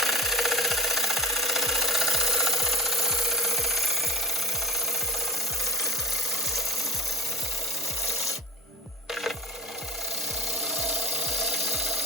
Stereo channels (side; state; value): both; normal; correlation 0.37